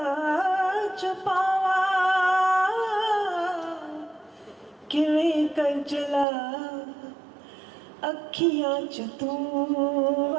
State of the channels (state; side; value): drops out; left; at 6.2 s